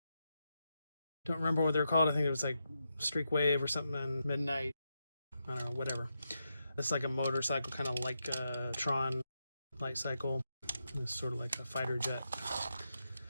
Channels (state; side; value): inverted; both; correlation -0.85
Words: Don't remember what they're called. I think it was like Streak Wave or something on Midnight. I don't know, whatever. It's like a motorcycle, kind of like a Tron light cycle. It's sort of like a fighter jet.